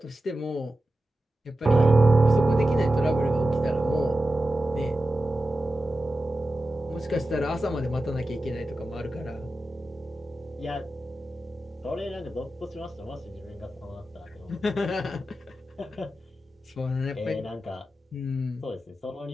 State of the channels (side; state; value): both; normal; correlation 0.93